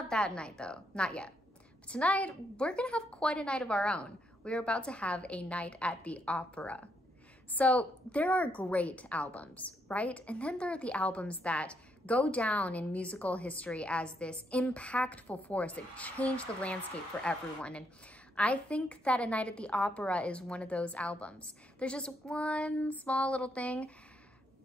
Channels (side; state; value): both; normal; correlation 0.76